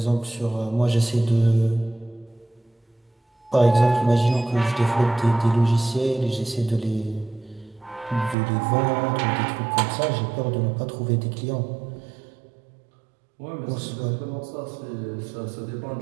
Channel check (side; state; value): left; drops out; at 8.3 s